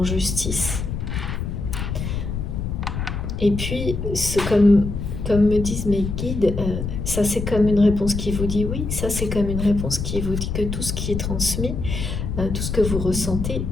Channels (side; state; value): left; noise; rumble, 4 dB below the sound